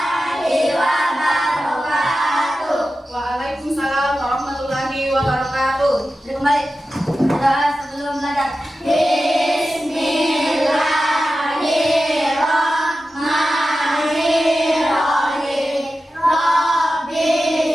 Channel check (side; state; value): both; normal; correlation 0.93